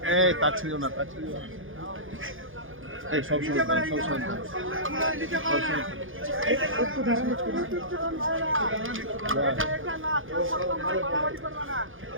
এই তার ছিল না। এই সব সময়।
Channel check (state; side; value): late; left; 0.58 ms